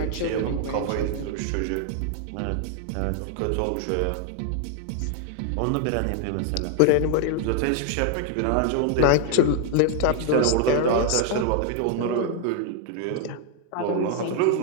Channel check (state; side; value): different; both; correlation 0.00